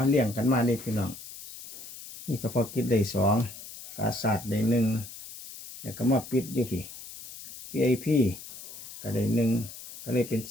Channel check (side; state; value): left; noise; hiss, 14 dB below the sound